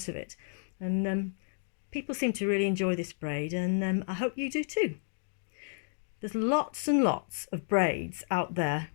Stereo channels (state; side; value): silent; right; digital silence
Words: of it. And people seem to really enjoy this braid, and I hope you do too. There's lots and lots of braids out there